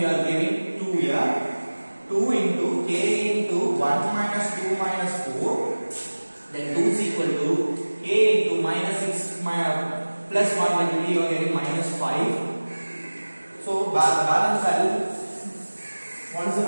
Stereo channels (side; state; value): both; inverted; correlation -1.00